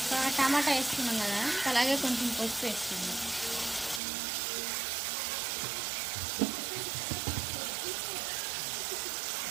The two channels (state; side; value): drops out; left; at 4.0 s